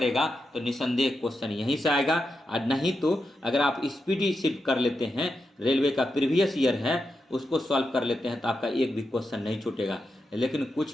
तो निसंदेह क्वेश्चन यहीं से आएगा। और नहीं तो अगर आप स्पीडी सिर्फ कर लेते हैं, रेलवे का प्रीवियस ईयर है उसको सॉल्व कर लेते हैं, तो आपका एक भी क्वेश्चन नहीं छूटेगा। लेकिन कुछ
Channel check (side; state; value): both; normal; correlation 0.87